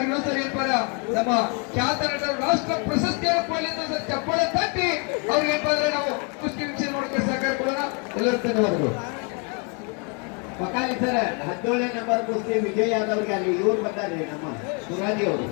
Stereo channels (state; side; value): quieter; right; 35.7 dB